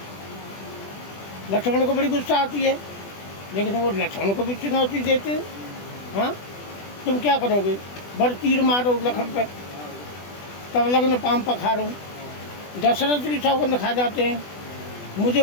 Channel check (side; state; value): right; late; 20 ms